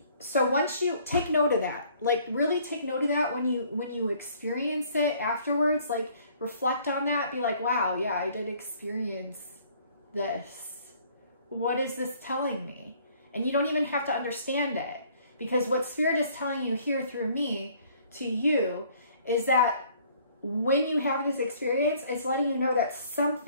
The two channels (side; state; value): both; inverted; correlation -0.59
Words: so once you take note of that, like really take note of that when you experience it afterwards, like reflect on that, be like, wow, yeah, I did experience this. What is this telling me? And you don't even have to understand it. Because what Spirit is telling you here through me to you is that when you have this experience, it's letting you know that